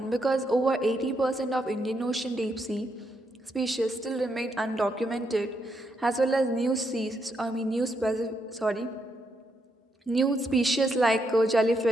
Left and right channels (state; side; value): normal; both; correlation 0.79